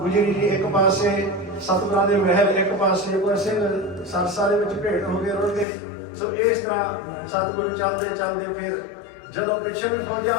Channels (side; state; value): right; drops out; at 5.7 s